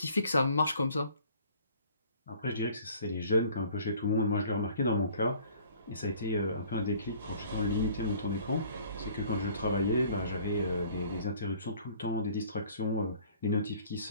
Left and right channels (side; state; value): both; inverted; correlation -0.54